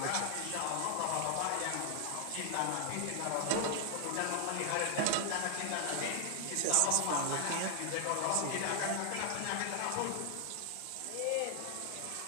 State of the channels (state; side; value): different; both; correlation 0.00